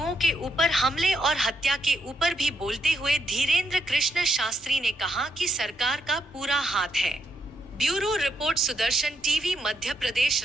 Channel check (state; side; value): normal; both; correlation 0.79